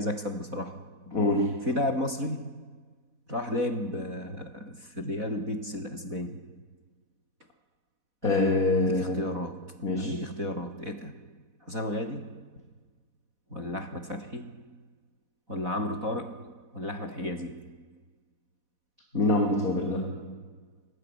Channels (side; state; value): left; late; 4.1 ms